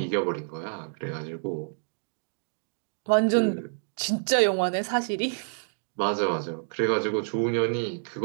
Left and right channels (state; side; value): silent; left; digital silence